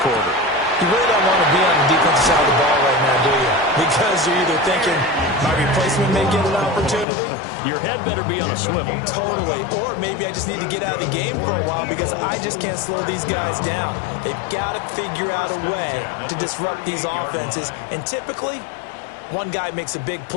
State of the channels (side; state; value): right; drops out; at 7.1 s